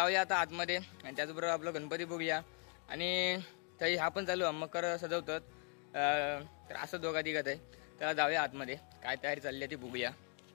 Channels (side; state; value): right; quieter; 39.6 dB